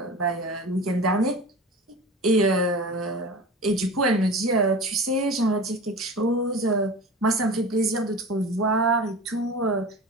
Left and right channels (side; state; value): both; normal; correlation 0.34